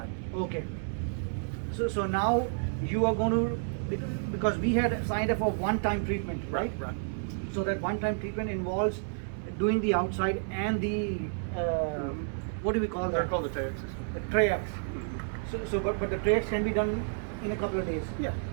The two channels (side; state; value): left; silent; 57 dB below the other